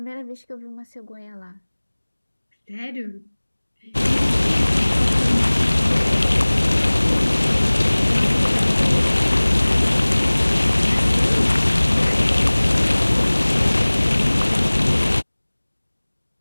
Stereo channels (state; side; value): inverted; both; correlation -1.00